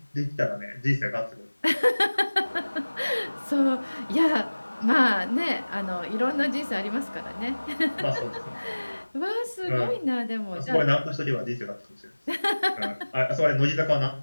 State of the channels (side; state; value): both; inverted; correlation -1.00